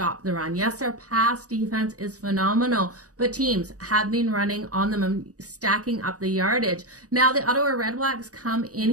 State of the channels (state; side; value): late; left; 0.66 ms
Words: the run. Yes, their pass defense is phenomenal, but teams have been running on them and stacking up the yardage. Now, the Ottawa Redblacks come in